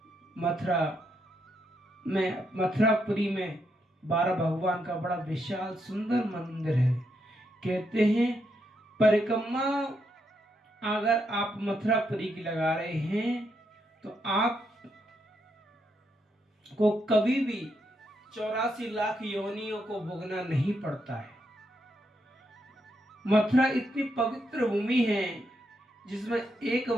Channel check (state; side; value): normal; both; correlation 0.79